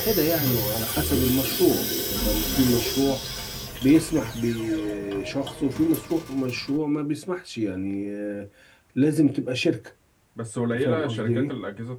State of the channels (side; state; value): both; identical; correlation 1.00